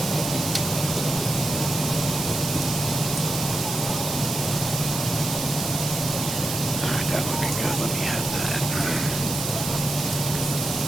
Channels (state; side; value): noise; right; hiss, 3 dB below the sound